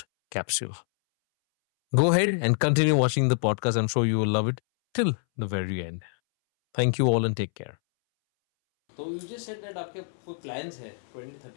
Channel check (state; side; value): silent; right; 61 dB below the other